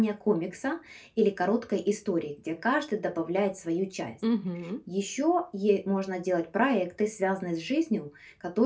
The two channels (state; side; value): identical; both; correlation 1.00